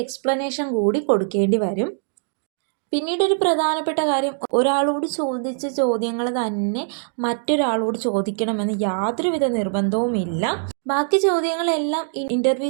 എക്സ്പ്ലനേഷൻ കൂടി കൊടുക്കേണ്ടി വരും. പിന്നീട് ഒരു പ്രധാനപ്പെട്ട കാര്യം, ഒരാളോട് ചോദിച്ച ചോദ്യങ്ങൾ തന്നെ മറ്റൊരാളോട് ചോദിക്കണമെന്ന് യാതൊരുവിധ നിർബന്ധവുമില്ല. ബാക്കി ചോദ്യങ്ങളെല്ലാം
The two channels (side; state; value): left; silent; digital silence